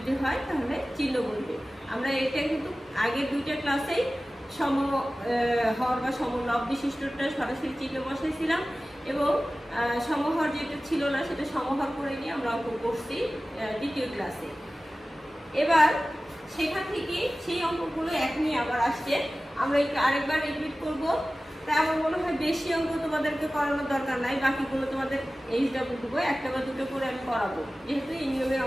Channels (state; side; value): normal; both; correlation 0.96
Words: হয় তাহলে চিহ্ন বলবে। আমরা এটা কিন্তু আগের দুইটা ক্লাসেই সমহর বা সমলব বিশিষ্টটা সরাসরি চিহ্ন বসাইছিলাম এবং সমহর যেটা ছিল না সেটা সমহর করে নিয়ে আমরা অঙ্ক করছি দ্বিতীয় ক্লাসে। এবার সেখান থেকে সেই অঙ্কগুলো এক নিয়ে আবার আসছে, আমরা আরেকবার রিপিট করব। তাই আমার মনে হয় বেশি অঙ্ক তোমাদেরকে করানোর দরকার নাই, বাকিগুলো তোমাদের এইচডব্লিউ দেবো, একটা বা দুটো করে আমি করাবো, যেহেতু এই নিয়মের